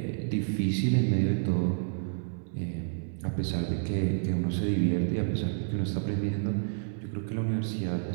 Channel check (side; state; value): left; silent; digital silence